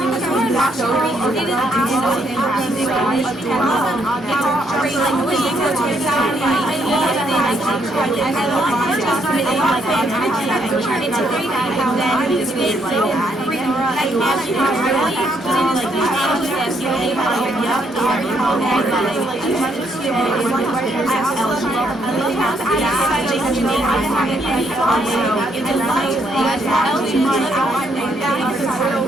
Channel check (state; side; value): normal; both; correlation 0.73